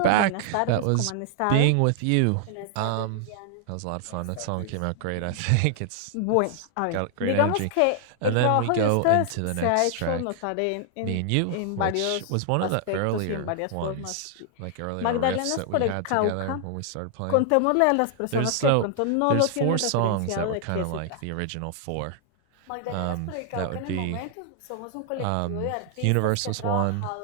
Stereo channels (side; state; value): both; different; correlation 0.00